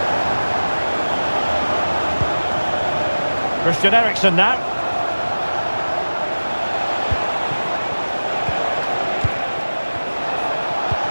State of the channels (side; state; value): both; inverted; correlation -1.00